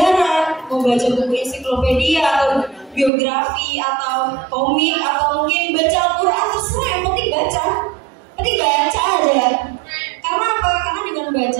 mau baca buku ensiklopedia atau biografi atau komik atau mungkin baca Al-Quran, terserah, yang penting baca. Penting baca aja. Karena apa? Karena dengan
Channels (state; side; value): drops out; left; at 3.1 s